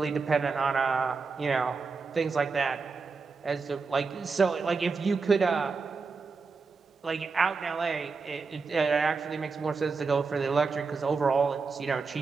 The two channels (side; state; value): left; quieter; 4.6 dB